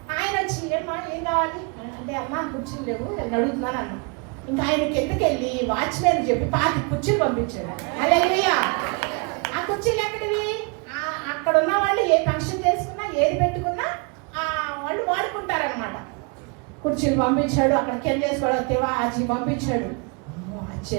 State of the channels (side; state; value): left; quieter; 33.0 dB